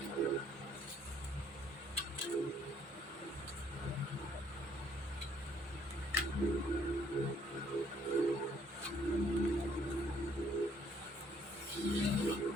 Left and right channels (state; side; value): normal; both; correlation 0.65